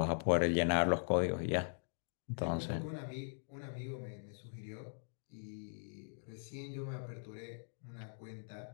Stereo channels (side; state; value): right; silent; digital silence